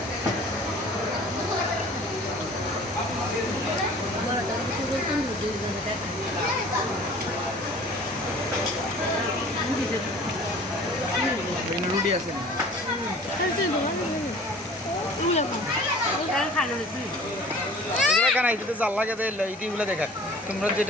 রুটি আছে কেন এটাতে জাল লাগে ইটিগুলো দেখা তোমরা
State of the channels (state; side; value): normal; both; correlation 0.47